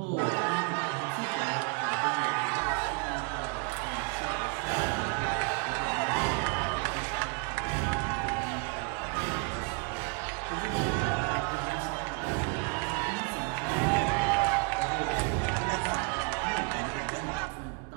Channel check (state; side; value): quieter; left; 33.2 dB